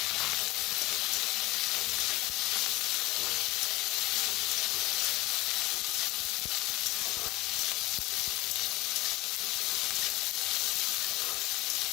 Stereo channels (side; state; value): right; quieter; 20.3 dB